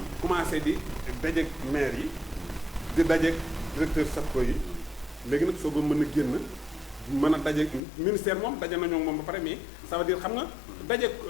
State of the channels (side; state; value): right; drops out; at 7.8 s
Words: commencé di dajeeg maire yi di dajeeg directeur SAPCO yi léegi nag soo ko mën a génn mën a dajeeg ministère moom daje nañoo moom ba pare mais ça veut dire xam nga dajeeg